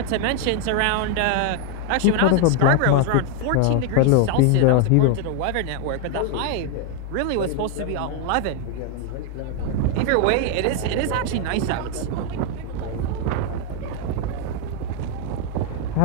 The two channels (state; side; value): different; both; correlation 0.00